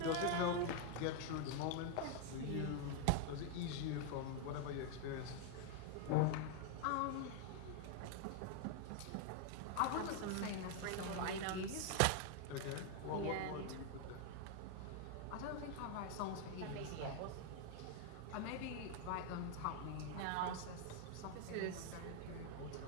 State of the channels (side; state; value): both; different; correlation 0.01